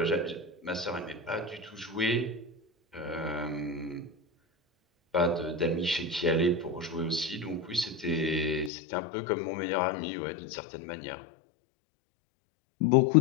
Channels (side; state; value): right; drops out; at 8.7 s